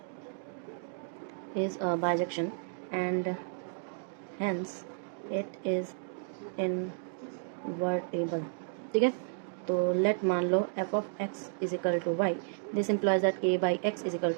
is a bijection and hence it is invertible, ठीक है। तो लेट मान लो f of x is equal to y, this implies that k by x is equal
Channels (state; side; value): silent; left; digital silence